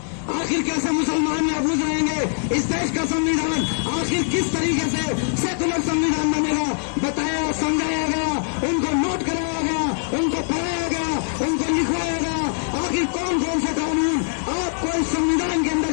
आखिर कैसे मुसलमान महफूज रहेंगे, इस देश का संविधान आखिर किस तरीके से सेकुलर संविधान बनेगा, बताया, समझाया गया, उनको नोट कराया गया, उनको पढ़ाया गया, उनको लिखवाया गया। आखिर कौन कौन से कानून आपको इस संविधान के अंदर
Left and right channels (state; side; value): silent; right; digital silence